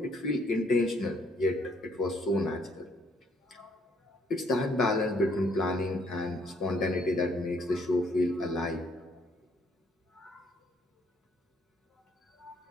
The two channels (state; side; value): normal; both; correlation 0.67